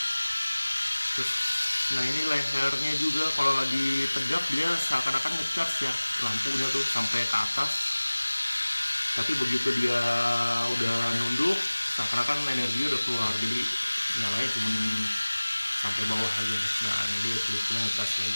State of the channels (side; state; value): both; inverted; correlation -1.00